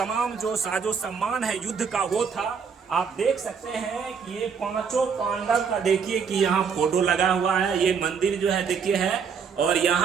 जो साजो सम्मान है युद्ध का वो था। आप देख सकते हैं कि ये 5 पांडव का देखिए कि यहाँ फोटो लगा हुआ है। ये मंदिर जो है देखिए है, और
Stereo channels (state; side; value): quieter; left; 6.3 dB